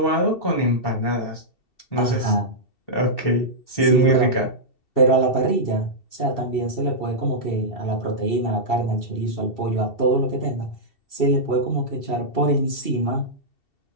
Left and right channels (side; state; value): right; late; 2.7 ms